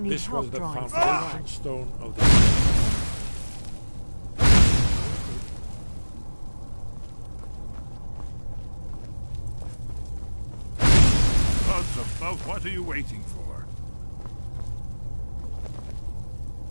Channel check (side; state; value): both; inverted; correlation -1.00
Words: need This help was the drawing foundation stone of the... Gods above, what are you waiting for?